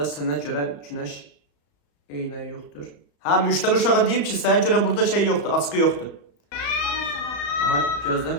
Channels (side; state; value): right; late; 34 ms